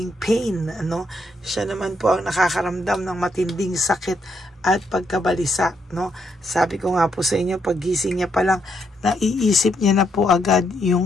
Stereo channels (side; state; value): both; normal; correlation 0.76